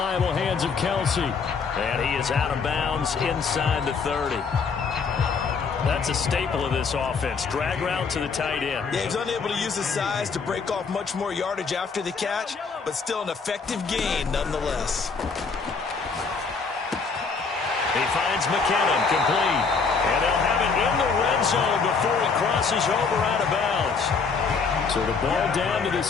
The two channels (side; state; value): right; quieter; 5.1 dB